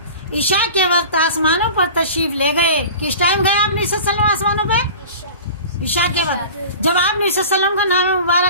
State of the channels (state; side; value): inverted; both; correlation -0.38